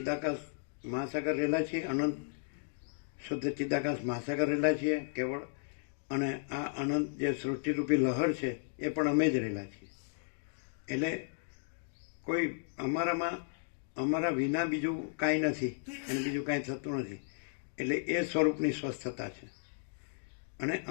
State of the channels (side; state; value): right; silent; digital silence